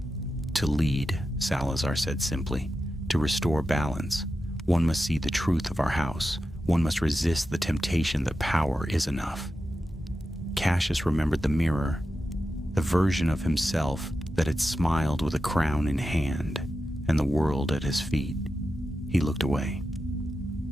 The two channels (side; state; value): both; normal; correlation 0.91